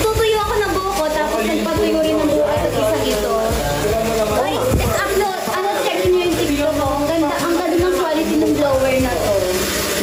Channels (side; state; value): both; identical; correlation 1.00